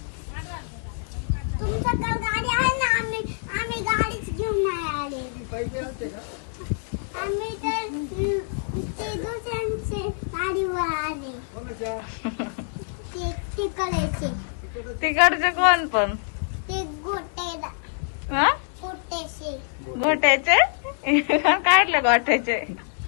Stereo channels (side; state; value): right; silent; digital silence